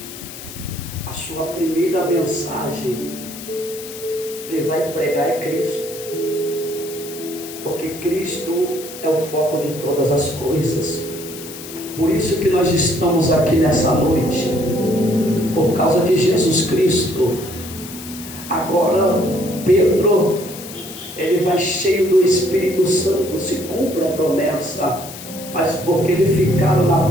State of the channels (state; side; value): noise; left; hiss, 13 dB below the sound